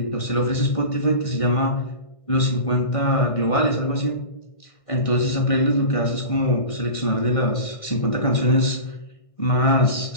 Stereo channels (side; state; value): right; late; 1.6 ms